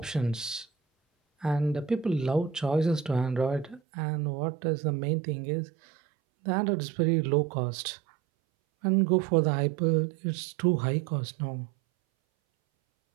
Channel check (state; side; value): drops out; left; at 3.8 s